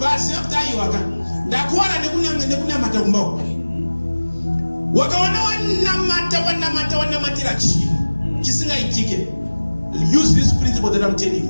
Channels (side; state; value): both; inverted; correlation -1.00